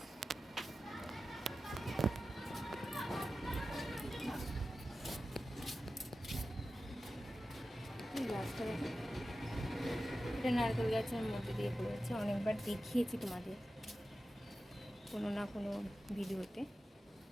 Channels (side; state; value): both; normal; correlation 0.93